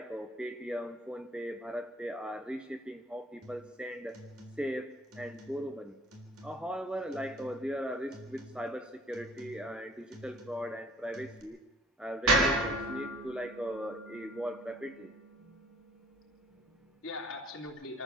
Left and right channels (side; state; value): both; normal; correlation 0.53